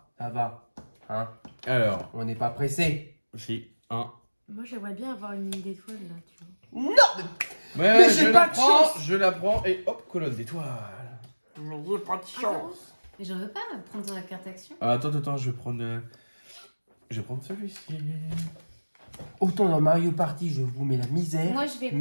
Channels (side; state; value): both; inverted; correlation -1.00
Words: ça va. Hein, Alors, on n'est pas pressé. si, 1. Moi, j'aimerais bien avoir une ligne d'étoile là, tu vois. Non, Mais j'ai je pas la de prends, chance. je la prends et hop, colonne d'étoiles. mais j'ai pas de chance. Mais j'en veux pas prendre la carte action. Ah, attends, je vais prendre. Je vais prendre celui-ci. Autant dans Mario Party, je vous mets la misère. Moi, je vais